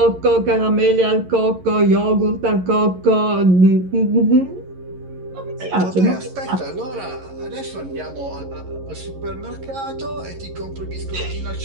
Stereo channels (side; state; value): left; late; 11 ms